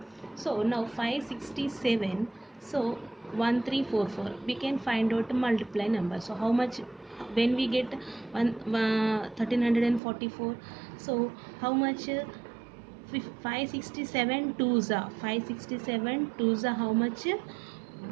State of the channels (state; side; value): drops out; left; at 10.0 s